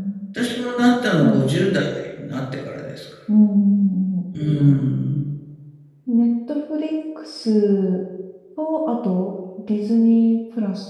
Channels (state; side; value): identical; both; correlation 1.00